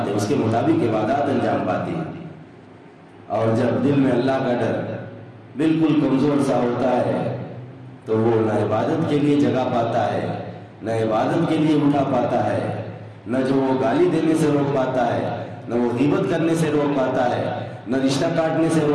ہیں، اس کے مطابق عبادات انجام پاتی ہیں۔ اور جب دل میں اللہ کا ڈر بالکل کمزور سا ہوتا ہے تو وہ نہ عبادت کے لیے جگہ پاتا ہے، نہ عبادت کے لیے اٹھا پاتا ہے، نہ جو وہ گالی دینے سے روک پاتا ہے، نہ وہ غیبت کرنے سے روک پاتا ہے، نہ رشتہ کاٹنے سے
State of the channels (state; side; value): identical; both; correlation 1.00